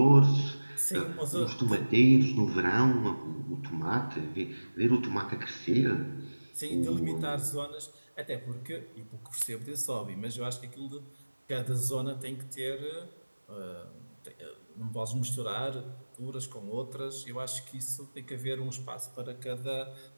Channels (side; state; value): both; inverted; correlation -1.00